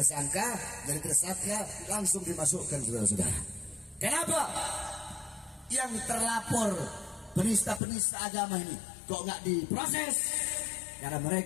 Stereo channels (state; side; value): drops out; right; at 7.8 s